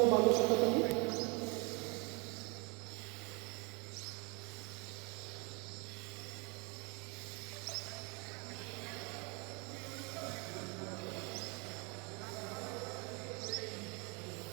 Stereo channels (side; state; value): left; quieter; 31.3 dB